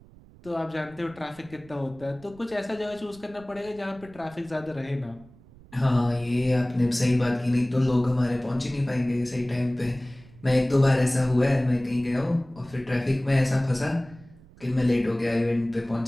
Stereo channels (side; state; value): right; noise; rumble, 23 dB below the sound